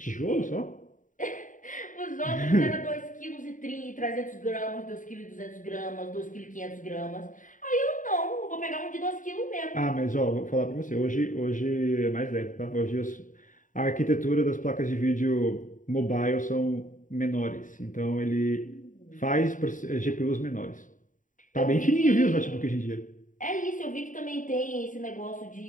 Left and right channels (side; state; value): right; late; 0.38 ms